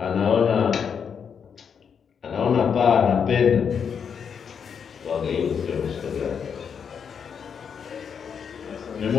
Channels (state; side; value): quieter; right; 7.0 dB